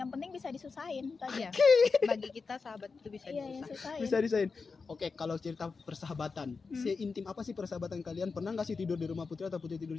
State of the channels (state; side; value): quieter; right; 4.7 dB